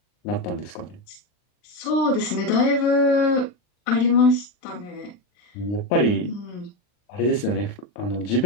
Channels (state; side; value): late; right; 39 ms